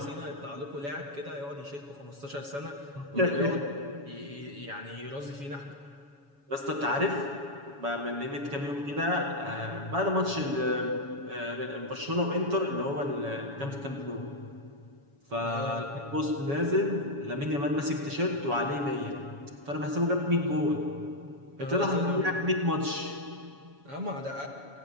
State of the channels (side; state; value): left; late; 7.1 ms